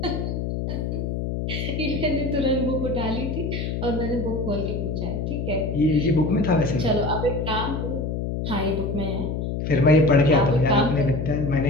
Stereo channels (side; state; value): left; noise; hum, 2 dB below the sound